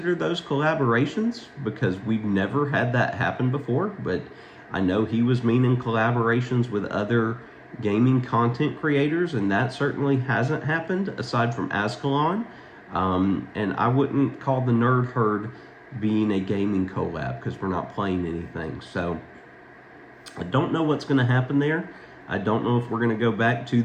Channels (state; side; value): identical; both; correlation 1.00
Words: those collaborations because we've never had that happen before, but I know he was meaning collaborations with other gaming content creators, and that certainly hasn't happened aside from Ascalon. And I wouldn't call the Nerd Herd being a gaming collab because we're not playing anything. So I don't know what's going to happen there. I don't know if we're going to go back to